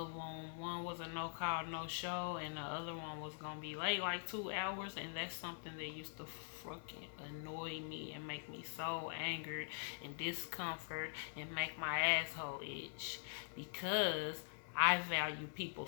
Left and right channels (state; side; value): silent; right; digital silence